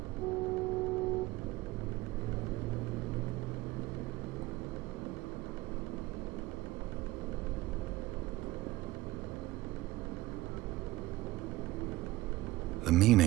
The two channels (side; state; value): left; quieter; 18.3 dB